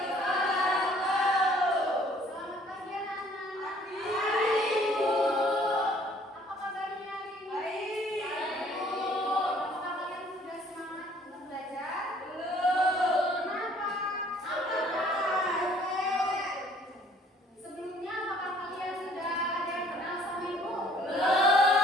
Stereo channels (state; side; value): normal; both; correlation 0.58